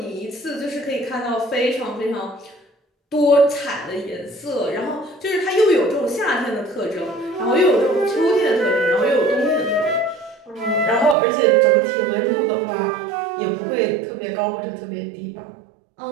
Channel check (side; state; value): left; drops out; at 11.2 s